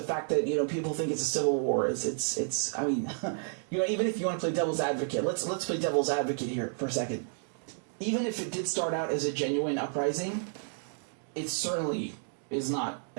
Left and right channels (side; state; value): left; silent; digital silence